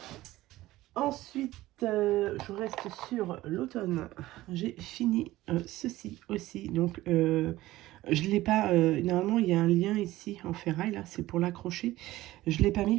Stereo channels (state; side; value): quieter; left; 16.7 dB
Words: Ensuite, je reste sur l'automne. J'ai fini ceci aussi. Donc, je ne l'ai pas... normalement, il y a un lien ici en ferraille, là, c'est pour l'accrocher. Je ne l'ai pas